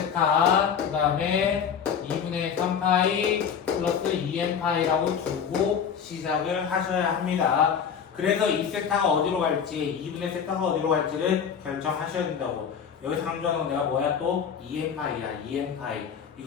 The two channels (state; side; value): quieter; right; 7.3 dB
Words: 그 다음에 2분의 3파이 플러스 2n 파이라고 두고 시작을 하셔야 합니다. 그래서 이 세타가 어디로 갈지 2분의 세타가 어디로 갈지를 결정하셔야 된다고. 여기서 강조하는 건 내가 뭐야 또 2n 파이야 2n 파이